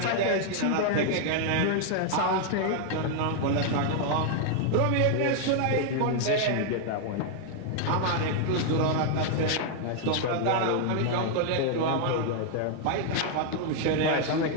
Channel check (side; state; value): both; different; correlation 0.00